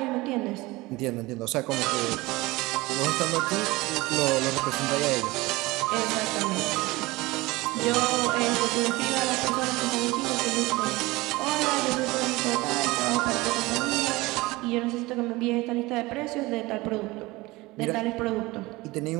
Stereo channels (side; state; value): left; quieter; 21.2 dB